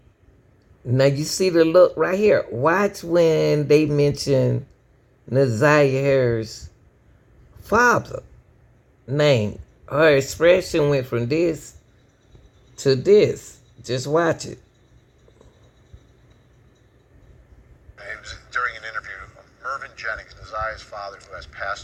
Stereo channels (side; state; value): both; identical; correlation 1.00